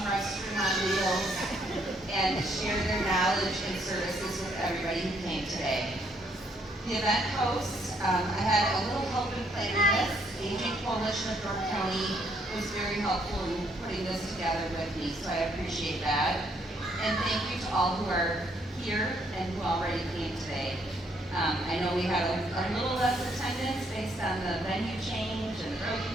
restaurant meals, and share their knowledge and services with everybody who came today. The event hosts, I had a little help in planning this. Aging Coalition of Door County was very helpful in putting this together with me, so I appreciate that. And thank you to all who are here and who already came today. I know we had a little less attendance based on the venue change and road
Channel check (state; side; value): normal; both; correlation 0.70